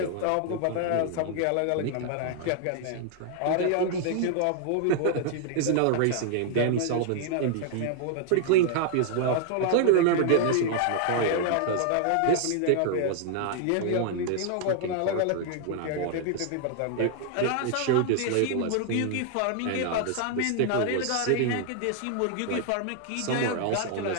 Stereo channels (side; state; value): both; different; correlation 0.00